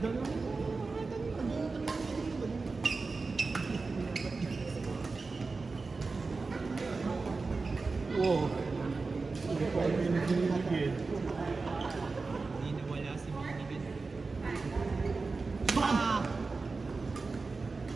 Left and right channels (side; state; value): left; quieter; 4.0 dB